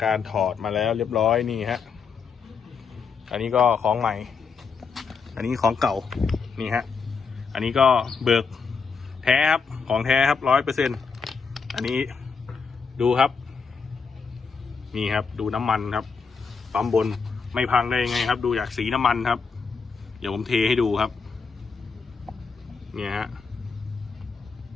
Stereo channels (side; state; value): right; quieter; 5.4 dB